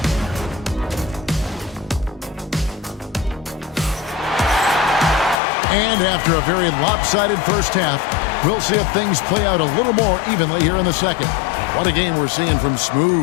And after a very lopsided first half, we'll see if things play out a little more evenly here in the second. What a game we're seeing from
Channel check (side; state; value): right; drops out; at 5.4 s